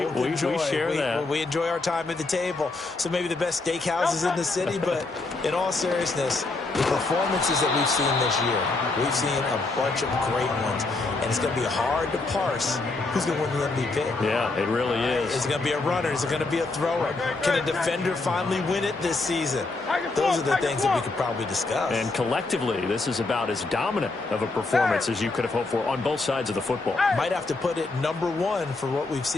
enjoy. We share that. We enjoy our time at the table. So maybe the best steakhouses in the city, but in all seriousness, the performances that we've seen this year, we've seen a bunch of great ones. And it's going to be hard to parse who's going to win the MVP. Yeah, it really is. Is it going to be a runner? Is it going to be a thrower? Can a defender finally win it this season? Those are the things that we could probably discuss. And collectively, this is about as dominant of a performance as you could have hoped for on both sides of the football. Might have to put it #1 for what we've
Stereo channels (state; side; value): quieter; right; 3.4 dB